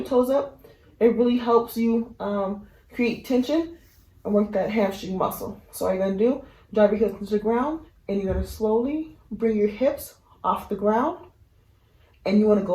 toes up. It really helps you create tension and work that hamstring muscle. So all you're going to do, drive your heels into the ground, and you're going to slowly bring your hips off the ground. And you want to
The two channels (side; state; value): both; identical; correlation 1.00